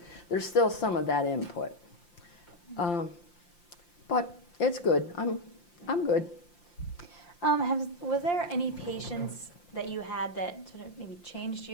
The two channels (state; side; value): late; right; 5.8 ms